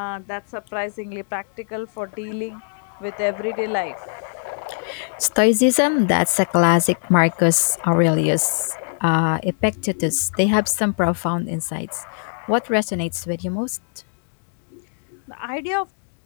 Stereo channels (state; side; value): silent; right; digital silence